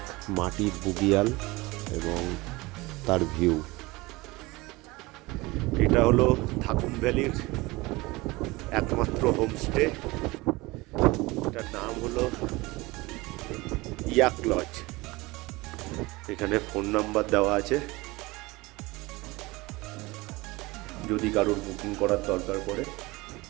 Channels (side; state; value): left; quieter; 22.1 dB